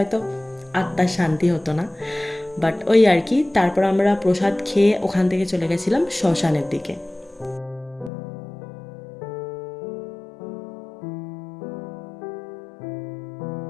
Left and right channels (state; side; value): drops out; right; at 8.1 s